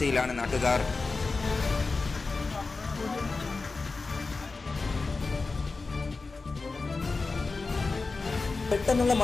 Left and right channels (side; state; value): right; quieter; 3.9 dB